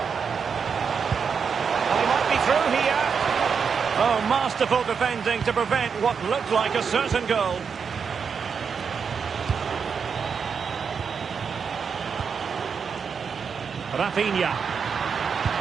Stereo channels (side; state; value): left; quieter; 6.2 dB